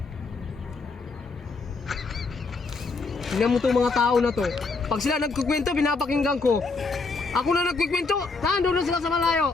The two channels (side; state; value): right; quieter; 4.1 dB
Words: Tingnan mo itong mga tao na to. Pag sila nagkukwento, pinapakinggan ko. Ako na nagkukwento, nandun na sila sa malayo.